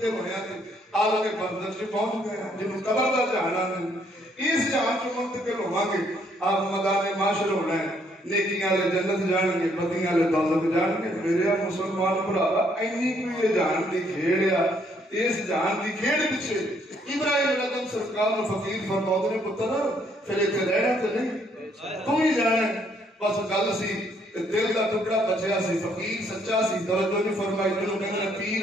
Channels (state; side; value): normal; both; correlation 0.69